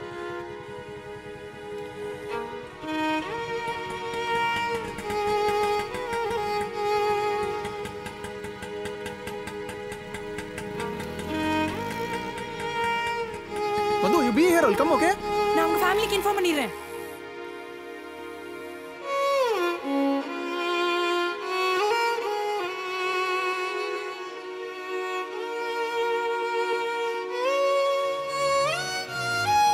Madhu, you be here. I'll come, okay? நான் உங்க ஃபேமிலிக்கு இன்ஃபார்ம் பண்ணிடுறேன்.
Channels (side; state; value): both; identical; correlation 1.00